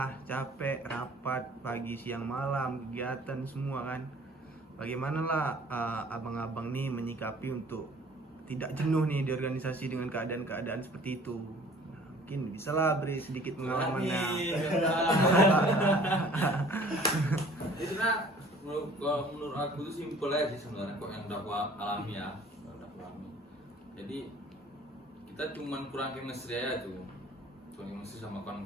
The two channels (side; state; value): both; normal; correlation 0.51